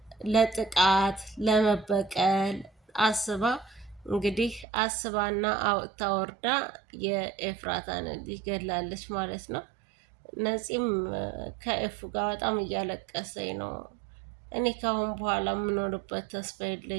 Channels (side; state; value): left; drops out; at 4.7 s